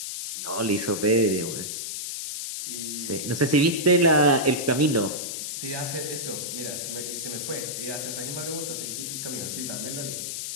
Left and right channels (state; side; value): noise; left; hiss, 5 dB below the sound